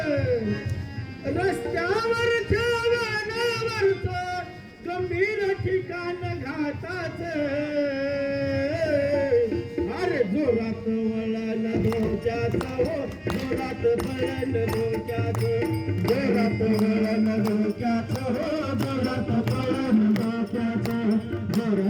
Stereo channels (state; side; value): identical; both; correlation 1.00